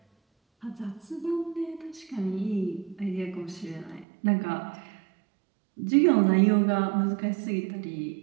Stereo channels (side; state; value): left; drops out; at 4.0 s